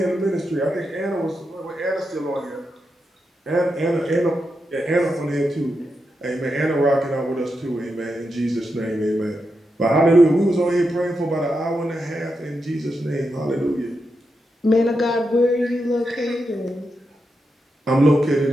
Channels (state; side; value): normal; both; correlation 0.86